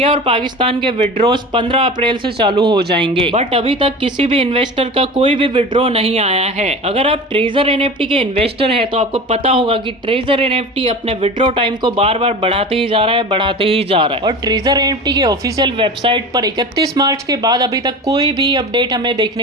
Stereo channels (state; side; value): normal; both; correlation 0.33